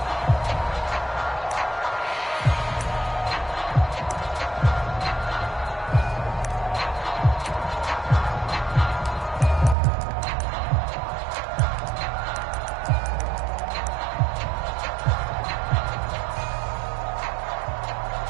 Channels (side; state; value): left; drops out; at 9.8 s